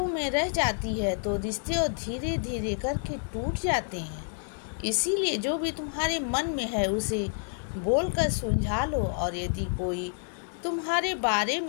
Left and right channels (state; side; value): silent; right; 59 dB below the other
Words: में रह जाती है तो रिश्ते और धीरे धीरे करके टूट जाते हैं। इसीलिए जो भी तुम्हारे मन में है उसे बोलकर सुलझा लो। और यदि कोई तुम्हारे बारे